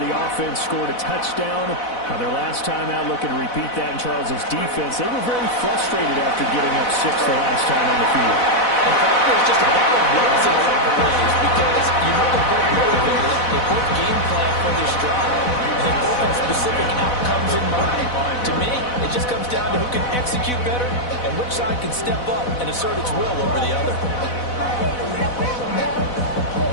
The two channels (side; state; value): right; late; 4.0 ms